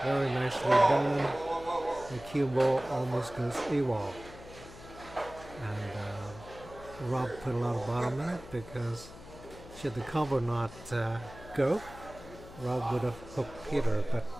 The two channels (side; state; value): left; noise; hum, 17 dB below the sound